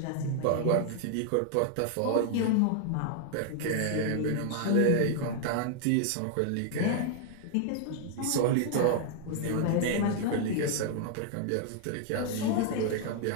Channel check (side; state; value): both; different; correlation -0.01